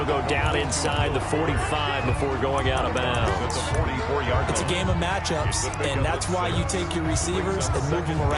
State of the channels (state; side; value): identical; both; correlation 1.00